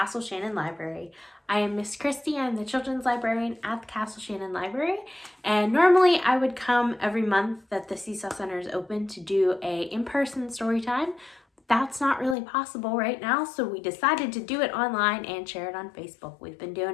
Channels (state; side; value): drops out; right; at 12.4 s